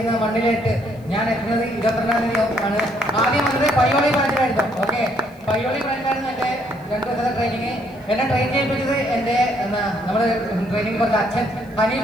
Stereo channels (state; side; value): noise; left; hiss, 30 dB below the sound